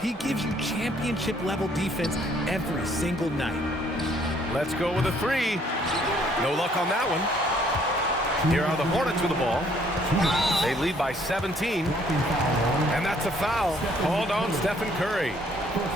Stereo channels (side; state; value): both; normal; correlation 0.63